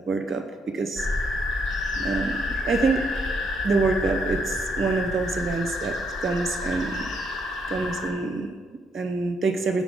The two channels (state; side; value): normal; both; correlation 0.74